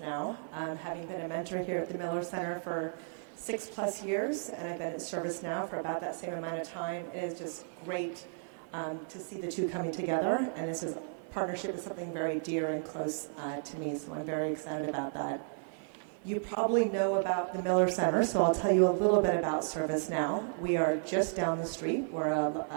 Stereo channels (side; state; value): left; silent; 55 dB below the other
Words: Having been a mentor here at the Miller Center for 6+ years, and I've been at ServiceNow for about that same amount of time. It is just great to see the two coming together, and this partnership is something very dear and close to me, so I'm very excited about that. You probably know about the Miller Center, so I'll tell you a little bit about ServiceNow. We are just down the street. We're